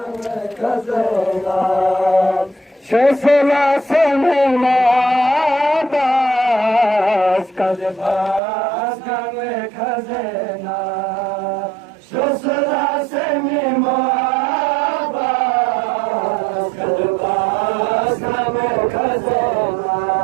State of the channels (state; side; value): drops out; left; at 8.4 s